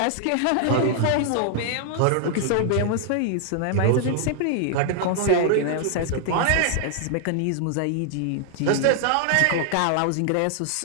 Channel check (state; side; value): different; both; correlation 0.00